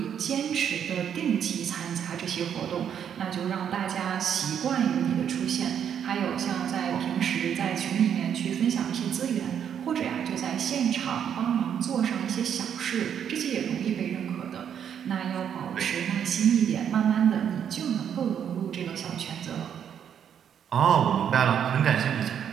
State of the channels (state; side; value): quieter; left; 8.6 dB